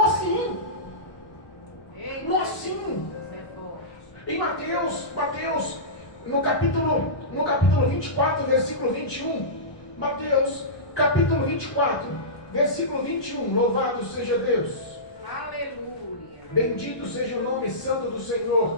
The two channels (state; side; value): late; right; 1.2 ms